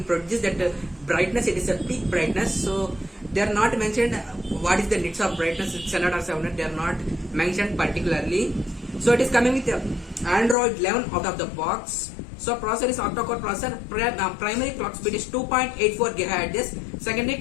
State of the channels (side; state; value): right; drops out; at 10.6 s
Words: produce that brightness. It is a peak brightness. So they are not mentioned what is the nits of brightness, 600 or 700. They are not mentioned particularly. So it is coming with Android 11 out of the box. So processor is octa-core processor. Primary clock speed is 2.84 GHz. Secondary